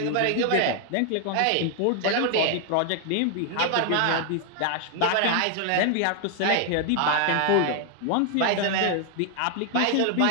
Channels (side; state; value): both; different; correlation 0.00